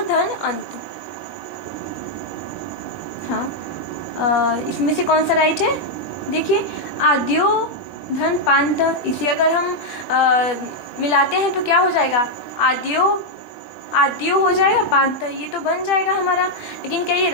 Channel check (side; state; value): right; late; 20 ms